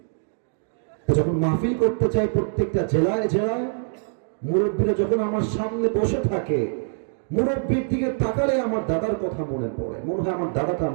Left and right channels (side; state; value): left; silent; digital silence